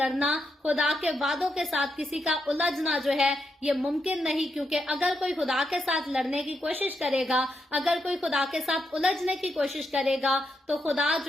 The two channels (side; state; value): both; normal; correlation 0.82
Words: خدا کے وعدوں کے ساتھ کسی کا الجھنا جو ہے یہ ممکن نہیں، کیونکہ اگر کوئی خدا کے ساتھ لڑنے کی کوشش کرے گا، اگر کوئی خدا کے ساتھ الجھنے کی کوشش کرے گا تو خدا